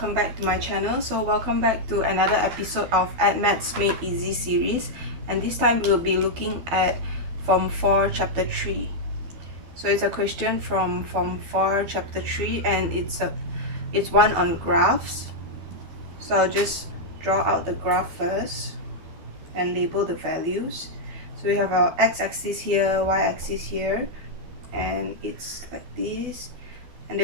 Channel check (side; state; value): left; late; 12 ms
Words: back to my channel. So welcome back to another episode of Maths Made Easy series, and this time we'll be looking at Form 4 Chapter 3. So it's a question from Form 4 Chapter 3 and it's one on graphs. So I'll just draw out the graph first and label the values. So we have our x-axis here, y-axis here, and it's like this. And